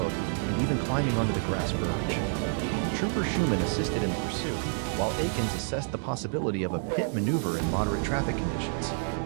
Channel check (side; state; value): left; silent; 59 dB below the other